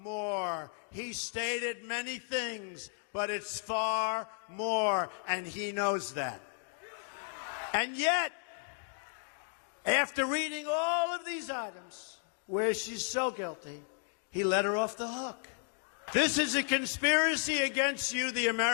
more. He stated many things, but it's far more, and he knows that. And yet, after reading all of these items where she's so guilty, he let her off the hook. This is a conspiracy against you, the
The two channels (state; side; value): silent; right; 55 dB below the other